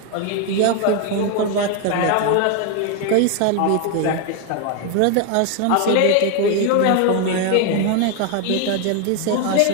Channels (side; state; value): both; different; correlation 0.01